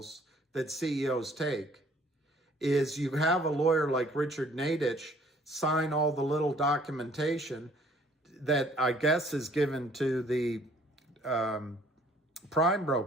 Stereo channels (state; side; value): normal; both; correlation 0.58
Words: that CEOs take is you have a lawyer like Richard Nadich sign all the little documentation that I guess is given to the prime